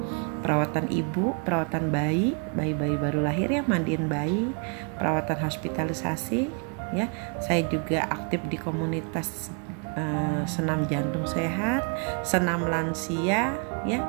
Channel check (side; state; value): left; quieter; 37.8 dB